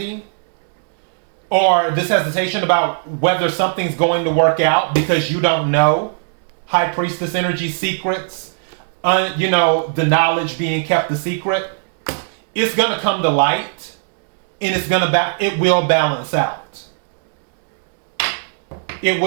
or this hesitation about whether something's going to work out because you don't know, High Priestess energy secrets, the knowledge being kept a secret, it's going to come to light and it will balance out. It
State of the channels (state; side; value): silent; left; digital silence